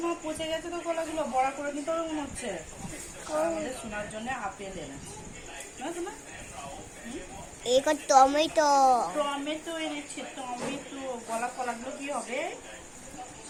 মা, পচে গেছে তো কলাগুলো, বড়া করে নিতে হবে মনে হচ্ছে। আমাদের সোনার জন্য আপেল এনেছে। টমেটো টমেটো এনেছে, টমেটো। কলাগুলো কি হবে?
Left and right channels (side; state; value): both; identical; correlation 1.00